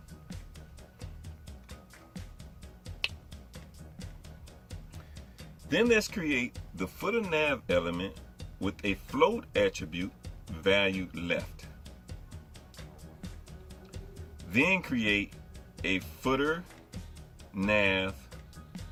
Then let's create the footer nav element with a float attribute valued left. Then create a footer nav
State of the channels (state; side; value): identical; both; correlation 1.00